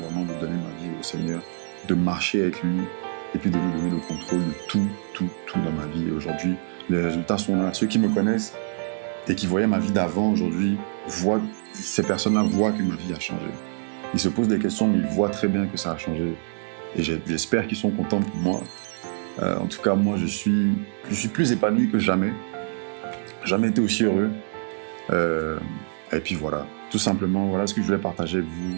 de donner ma vie au Seigneur, de marcher avec lui et puis de lui donner le contrôle de tout dans ma vie. Et aujourd'hui, les résultats sont là. Ceux qui me connaissent et qui voyaient ma vie d'avant aujourd'hui, ces personnes-là voient que ma vie a changé. Ils se posent des questions, mais ils voient très bien que ça a changé. Et j'espère qu'ils sont contents pour moi. En tout cas, moi, je suis plus épanoui que jamais. Jamais été aussi heureux. Et puis voilà, tout simplement, voilà ce que je voulais partager avec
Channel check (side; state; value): left; silent; digital silence